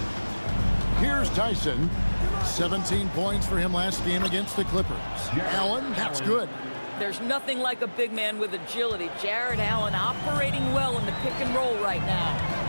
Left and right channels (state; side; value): inverted; both; correlation -1.00